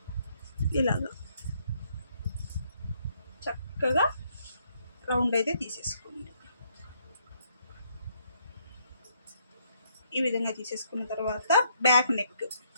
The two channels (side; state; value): both; inverted; correlation -0.71